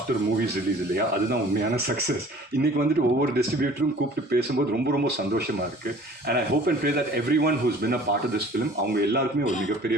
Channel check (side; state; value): both; normal; correlation 0.48